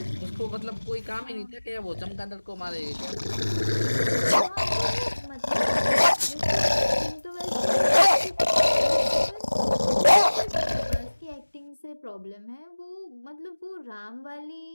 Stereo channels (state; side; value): inverted; both; correlation -1.00